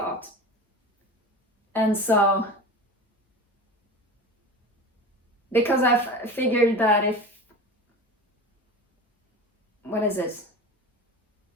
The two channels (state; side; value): normal; both; correlation 0.32